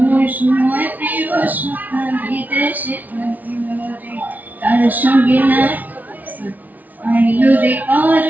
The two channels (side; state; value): left; late; 0.077 ms